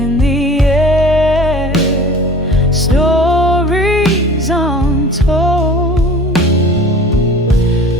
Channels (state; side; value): normal; both; correlation 0.43